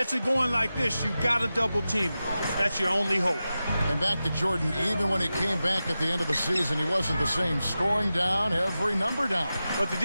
it going like this, you've got to double team it. That's your only hope. And back to Jordan, even when he came back at the end of the season, he wasn't the same. Scoring down, every number down. But the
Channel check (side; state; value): both; inverted; correlation -0.93